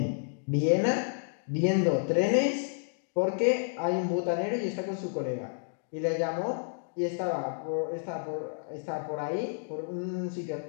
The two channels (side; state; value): right; silent; digital silence